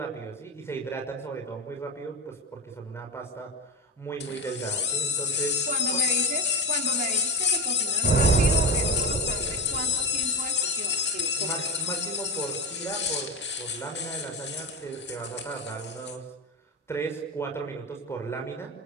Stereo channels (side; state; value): both; normal; correlation 0.22